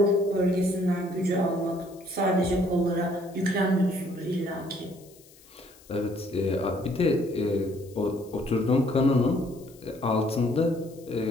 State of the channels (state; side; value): noise; left; hiss, 25 dB below the sound